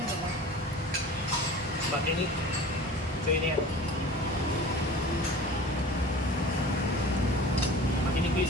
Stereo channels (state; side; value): normal; both; correlation 0.40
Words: ba? Makinig. So yun yan. Makinig ko